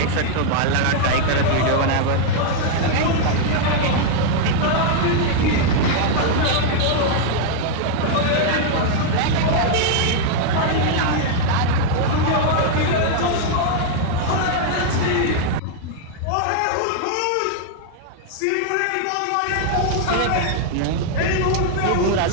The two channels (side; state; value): both; different; correlation -0.01